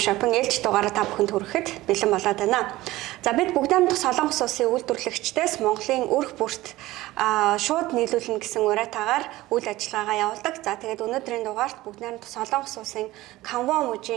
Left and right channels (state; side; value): quieter; left; 17.6 dB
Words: Shopping ээлж дугаараа та бүхэнд хүрэхэд бэлэн болоод байна. За бид бүгд найрамдах Солонгос улсын үйлдвэрлэгчдээс Монголын өрх бүрт шууд нийлүүлнэ гэсэн уриатаагаар үйл ажиллагаагаа явуулдаг. За тэгээд өнөөдрийн дугаарт бүгд найрамдах Солонгос улсын Canva